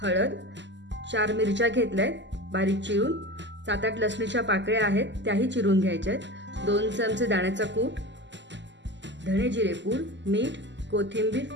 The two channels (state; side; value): late; left; 0.53 ms